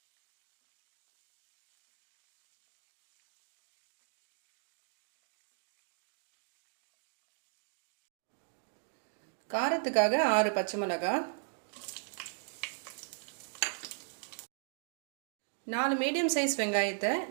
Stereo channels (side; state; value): left; silent; digital silence